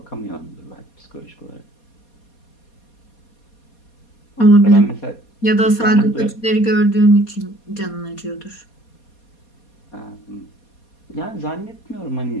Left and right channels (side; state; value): right; late; 4.2 ms